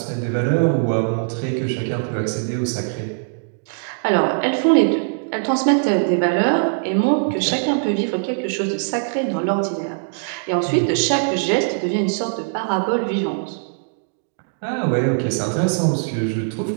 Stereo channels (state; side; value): silent; left; digital silence